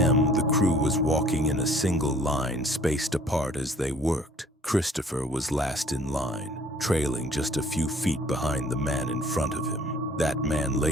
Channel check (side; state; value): both; normal; correlation 0.56